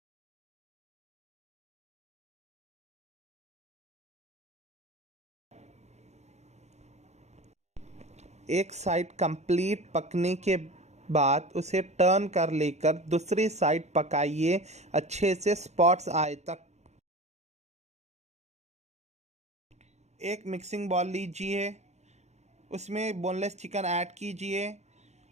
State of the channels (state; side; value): late; left; 0.32 ms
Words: एक साइड कंप्लीट पकने के बाद उसे टर्न कर लेकर दूसरी साइड पकाइए अच्छे से स्पॉट्स आए तक। एक मिक्सिंग बॉल लीजिए, उसमें बोनलेस चिकन ऐड कीजिए,